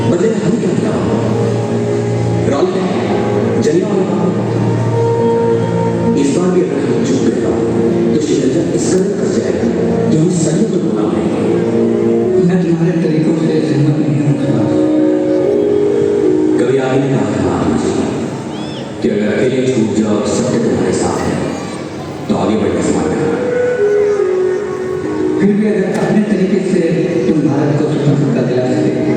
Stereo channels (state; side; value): identical; both; correlation 1.00